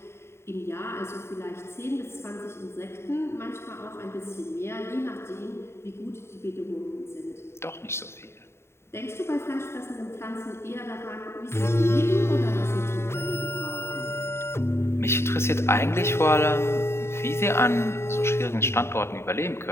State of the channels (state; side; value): late; right; 0.12 ms